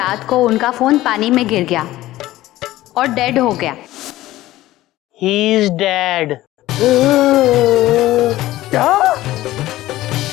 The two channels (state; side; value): quieter; right; 16.0 dB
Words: को उनका फोन पानी में गिर गया और डेड हो गया। He is dead. क्या?